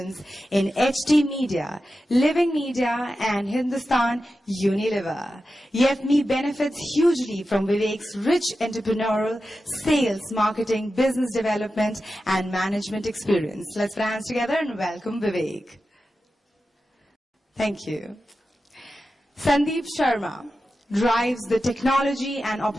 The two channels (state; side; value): normal; both; correlation 0.92